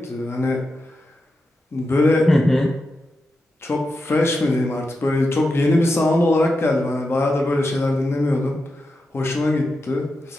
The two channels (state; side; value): normal; both; correlation 0.89